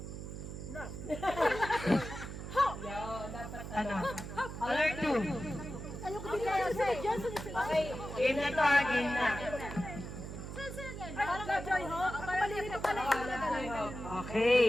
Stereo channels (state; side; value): noise; right; hum, 8 dB below the sound